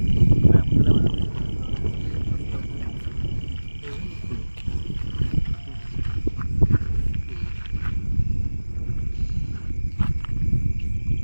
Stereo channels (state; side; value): inverted; both; correlation -1.00